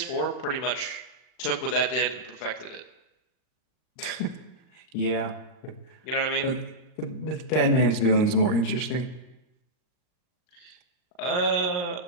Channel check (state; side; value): late; right; 39 ms